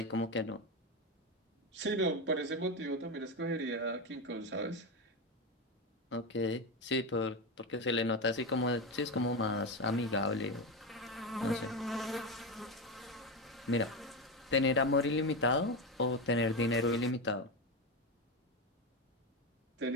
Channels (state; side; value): normal; both; correlation 0.15